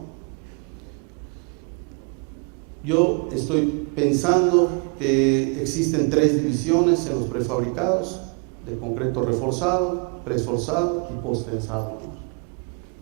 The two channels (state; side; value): quieter; left; 36.4 dB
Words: Yo estoy pensando que existen 3 divisiones en los prefabricados: de concreto reforzado, preesforzado y posttensado, ¿no?